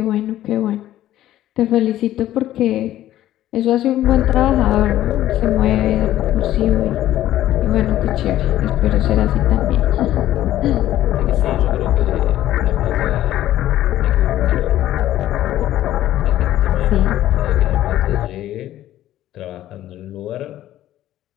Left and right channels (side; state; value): right; quieter; 13.4 dB